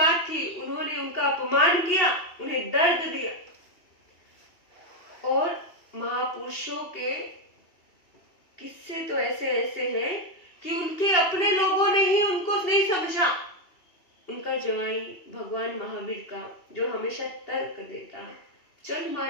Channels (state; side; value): late; right; 2.7 ms